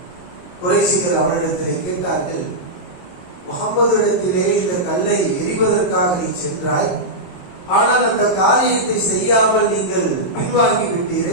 குறைஷிகள் அவனிடத்திலே கேட்டார்கள், முஹம்மது இடத்திலே இந்த கல்லை எறிவதற்காக நீ சென்றாய், ஆனால் அந்த காரியத்தை செய்யாமல் நீங்கள் பின்வாங்கி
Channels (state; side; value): late; right; 22 ms